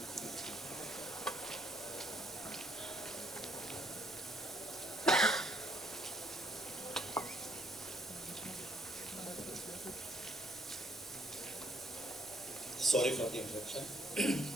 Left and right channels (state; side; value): noise; left; rumble, 29 dB below the sound